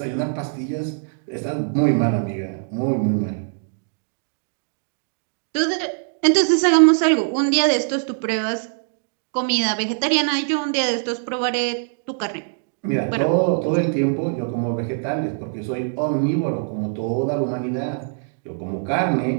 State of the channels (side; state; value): left; silent; digital silence